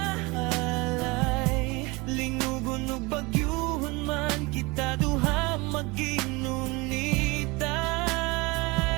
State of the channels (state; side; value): quieter; left; 25.2 dB